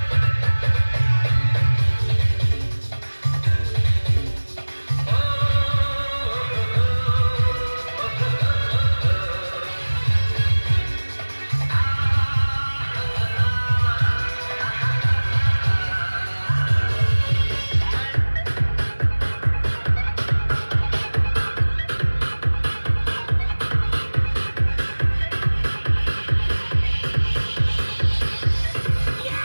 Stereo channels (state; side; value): inverted; both; correlation -1.00